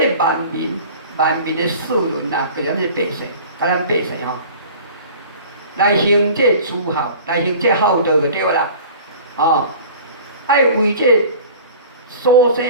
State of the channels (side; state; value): both; inverted; correlation -0.42